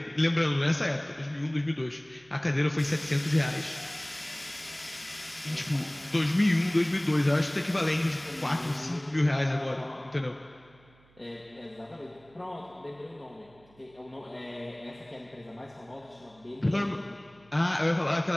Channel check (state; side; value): noise; right; hum, 29 dB below the sound